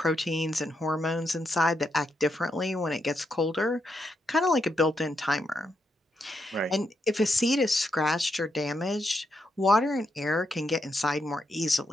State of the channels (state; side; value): normal; both; correlation 0.81